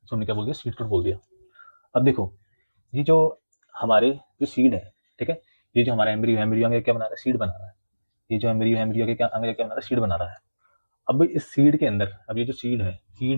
उसको हमने क्या बोल दिया, सीड कोड बोल दिया। अब देखो ये जो हमारे जो सीड है, ठीक है, ये जो हमारा एम्ब्रियो, एम्ब्रियो आगे क्या बना रहा है, सीड बना रहा है, ये जो एम्ब्रियो, एम्ब्रियो के क्या आगे क्या बना रहा है, सीड बना रहा है। अब इस सीड के अंदर, अब ये जो सीड है,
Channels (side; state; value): both; inverted; correlation -1.00